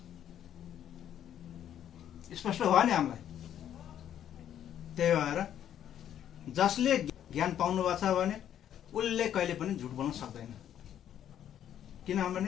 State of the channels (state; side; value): quieter; right; 10.3 dB